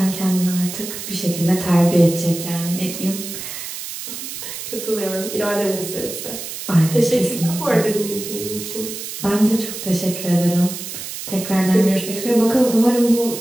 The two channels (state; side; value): noise; right; hiss, 8 dB below the sound